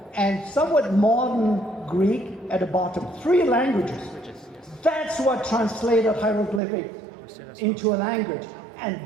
and somewhat modern Greek at the bottom. 3 languages. That's what translated hieroglyphic into a language.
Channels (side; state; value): left; drops out; at 6.6 s